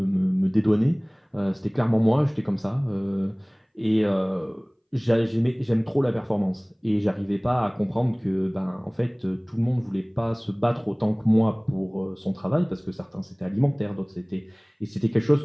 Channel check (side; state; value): both; identical; correlation 1.00